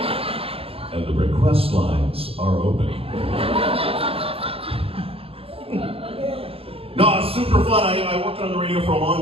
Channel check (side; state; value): left; late; 0.27 ms